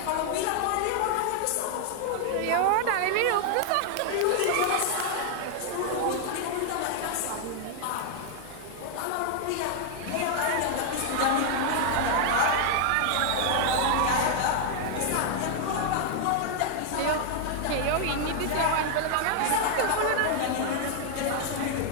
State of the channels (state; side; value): different; both; correlation 0.00